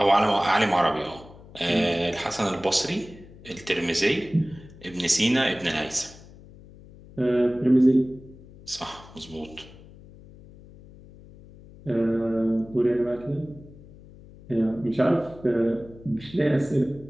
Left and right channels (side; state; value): left; noise; hum, 20 dB below the sound